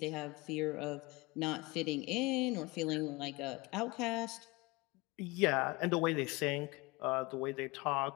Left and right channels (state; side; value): quieter; right; 24.1 dB